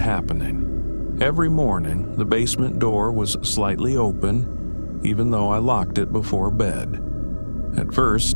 Every morning, the basement door was slightly open, even though I locked it before bed. At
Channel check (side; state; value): both; inverted; correlation -1.00